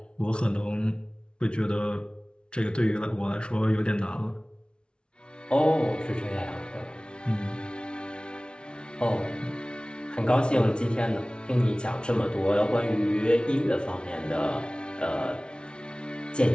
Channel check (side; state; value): right; late; 0.056 ms